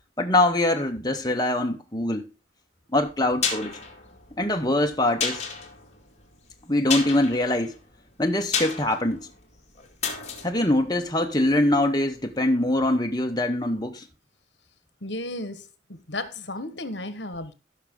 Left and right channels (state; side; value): normal; both; correlation 0.52